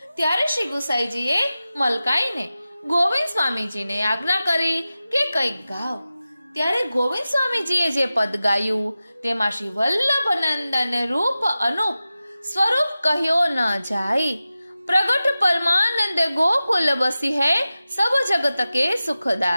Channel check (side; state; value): both; inverted; correlation -0.94